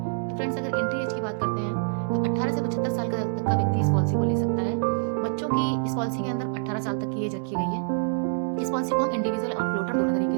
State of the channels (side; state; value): left; silent; 61 dB below the other